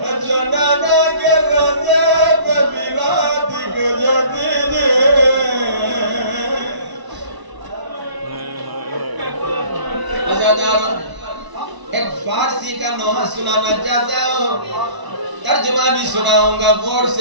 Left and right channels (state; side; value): late; left; 1.0 ms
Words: ایک فارسی کا نوحہ سنانا چاہتا ہوں. ترجمہ بھی سناؤں گا غور